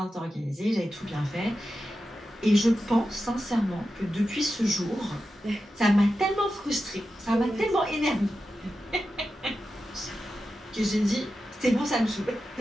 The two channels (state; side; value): normal; both; correlation 0.91